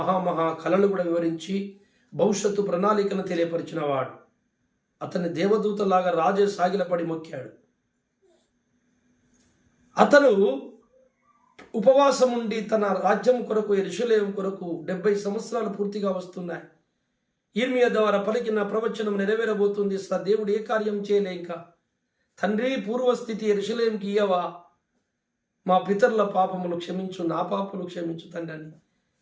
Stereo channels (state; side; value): identical; both; correlation 1.00